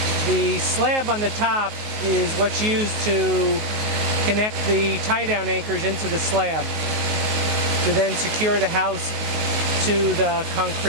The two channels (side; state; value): left; late; 19 ms